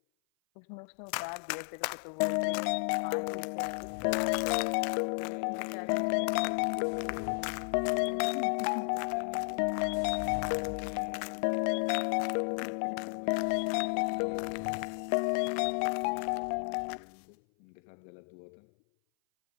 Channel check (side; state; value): right; silent; 56 dB below the other